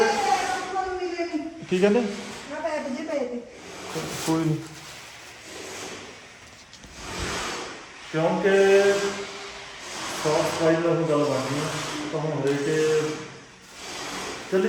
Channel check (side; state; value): both; identical; correlation 1.00